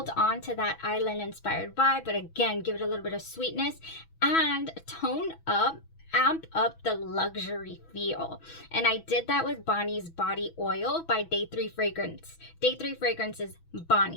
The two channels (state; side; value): late; right; 6.1 ms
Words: on to that island inspired vibe, but again, give it a little bit of sweetness and tone up, amp up the luxury feel. And I did that with Bani's Body Oil by Day 3 Fragrance. Day 3 Fragrance is